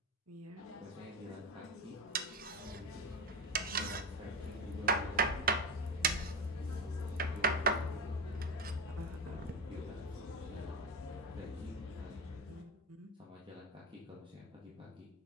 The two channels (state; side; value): normal; both; correlation 0.20